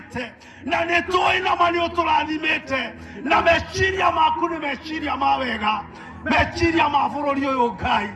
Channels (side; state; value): both; identical; correlation 1.00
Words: na nĩ tũĩ nama nĩ ũtũrathimĩte na meciria maku nĩ meciria ma wega, meciria ma bũrũri ũyũ Ngai.